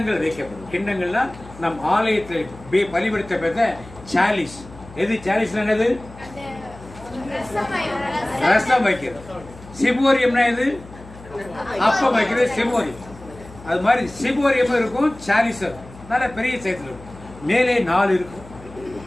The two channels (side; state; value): left; noise; hum, 18 dB below the sound